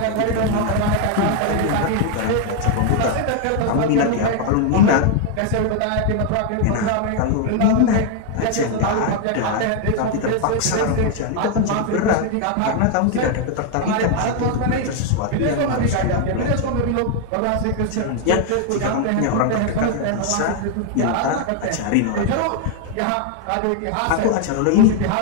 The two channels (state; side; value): different; both; correlation 0.00